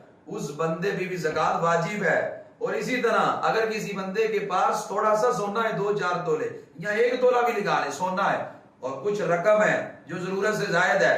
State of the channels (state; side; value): identical; both; correlation 1.00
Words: اس بندے پہ بھی زکات واجب ہے۔ اور اسی طرح اگر کسی بندے کے پاس تھوڑا سا سونا ہے 2-4 تولے یا 1 تولہ بھی لگا لے سونا ہے اور کچھ رقم ہے جو ضرورت سے زائد ہے